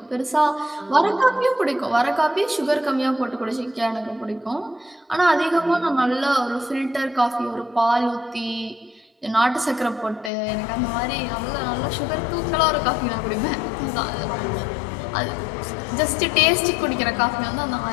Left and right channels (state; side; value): drops out; right; at 10.3 s